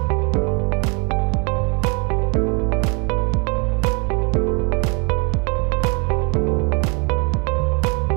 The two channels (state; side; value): quieter; left; 33.5 dB